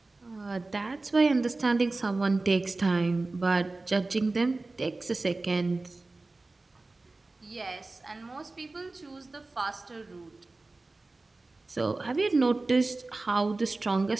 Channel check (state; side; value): quieter; left; 3.3 dB